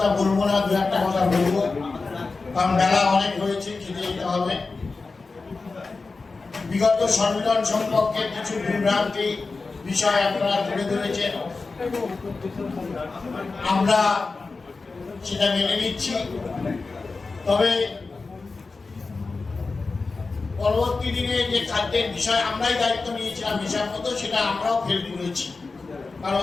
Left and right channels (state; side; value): quieter; right; 4.0 dB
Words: বলবো না, দু একটা কথা বলবো। কারণ বেলা অনেক হয়েছে, খেতে যেতে হবে। বিগত সম্মেলন সম্পর্কে কিছু বিভ্রান্তি বিষয় আপনারা তুলে ধরেছেন, আমরা সেটা মেনে নিচ্ছি। তবে পরবর্তী দিনে যে খাদ্যের বিষয় আমরাই দায়িত্ব নিয়েছিলাম হিসাব মতো, সেটা আমরাও ফেল করেছি। কারণ